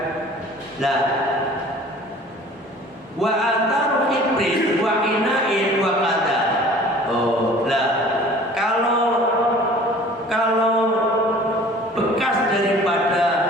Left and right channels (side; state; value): both; normal; correlation 0.47